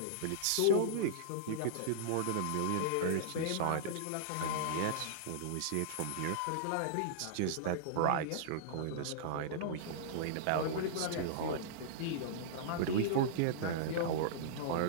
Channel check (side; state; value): both; different; correlation -0.02